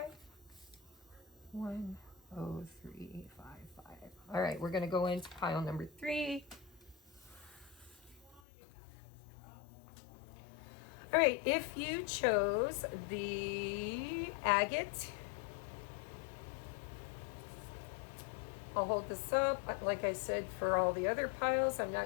1:03:55. All right, we're going to go into pile number 3. All right, if you chose the agate, I'll hold this up. Like I said, for all the other piles, I'm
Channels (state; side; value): drops out; right; at 8.4 s